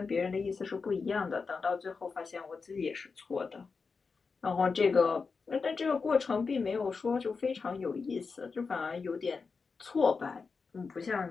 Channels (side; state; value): right; quieter; 4.8 dB